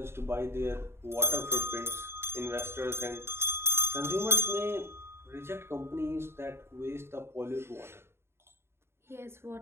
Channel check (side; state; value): left; late; 0.12 ms